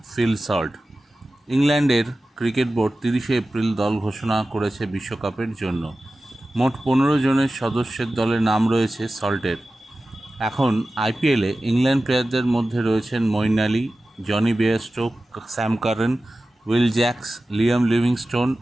ফিল সল্ট। ইংল্যান্ডের ক্রিকেট বোর্ড 30শে এপ্রিল দল ঘোষণা করেছে বিশ্বকাপের জন্য। মোট 15 জনের সদস্যের দলে নাম রয়েছে সল্টের। এখন আইপিএলে ইংল্যান্ড প্লেয়ারদের মধ্যে রয়েছেন Moeen Ali, Jonny Bairstow, Sam Curran, Will Jacks, Liam Livingstone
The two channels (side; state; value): both; normal; correlation 0.95